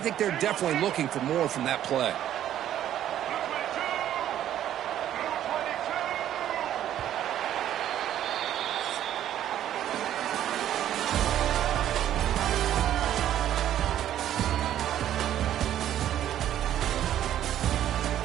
think they're definitely looking for more from that play.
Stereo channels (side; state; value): left; quieter; 11.4 dB